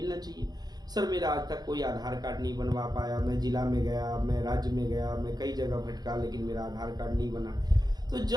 चाहिए। सर, मेरा आज तक कोई आधार कार्ड नहीं बनवा पाया। मैं जिला में गया, मैं राज्य में गया, मैं कई जगह भटका, लेकिन मेरा आधार कार्ड नहीं बना। तो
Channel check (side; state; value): left; late; 0.19 ms